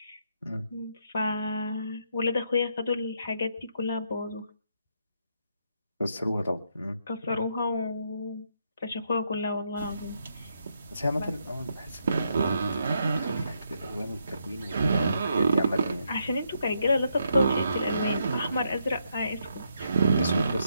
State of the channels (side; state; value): both; inverted; correlation -0.77